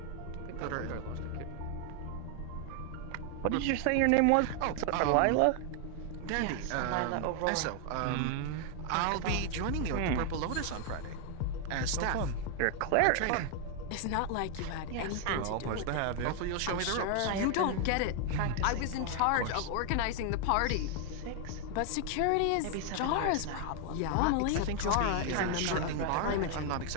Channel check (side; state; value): both; different; correlation 0.00